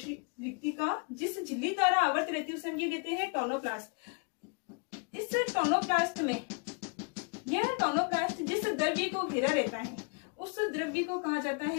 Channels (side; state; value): right; quieter; 35.3 dB